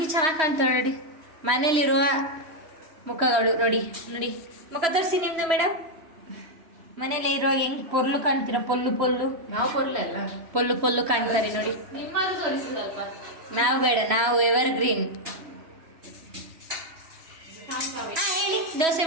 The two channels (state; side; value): late; left; 3.1 ms